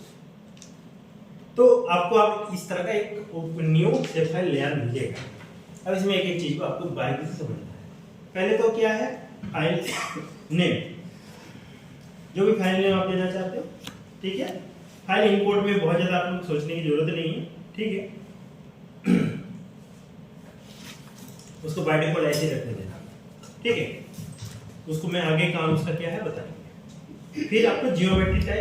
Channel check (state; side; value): identical; both; correlation 1.00